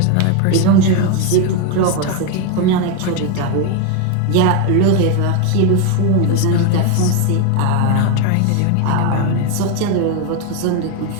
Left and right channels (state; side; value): different; both; correlation 0.02